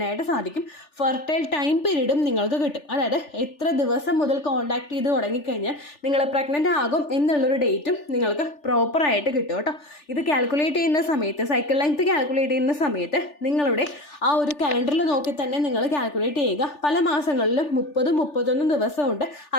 സാധിക്കും. ഫെർട്ടൈൽ ടൈം പീരീഡും നിങ്ങൾക്ക് കിട്ടും. അതായത് എത്ര ദിവസം മുതൽ കോൺടാക്ട് ചെയ്ത് തുടങ്ങിക്കഴിഞ്ഞാൽ നിങ്ങൾ പ്രഗ്നൻ്റ് ആകും എന്നുള്ളൊരു ഡേറ്റും നിങ്ങൾക്ക് പ്രോപ്പറായിട്ട് കിട്ടും കേട്ടോ. ഇത് കാൽക്കുലേറ്റ് ചെയ്യുന്ന സമയത്ത് സൈക്കിൾ ലെങ്ത് കാൽക്കുലേറ്റ് ചെയ്യുന്ന സമയത്ത് നിങ്ങളുടെ ആ ഒരു കലണ്ടറിൽ നോക്കി തന്നെ നിങ്ങൾ കാൽക്കുലേറ്റ് ചെയ്യുക. പല മാസങ്ങളിലും 30-31 ദിവസമുണ്ട്,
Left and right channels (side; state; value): right; late; 3.4 ms